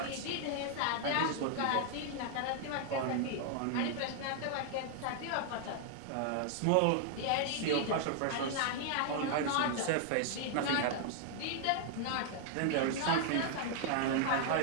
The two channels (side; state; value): both; different; correlation 0.00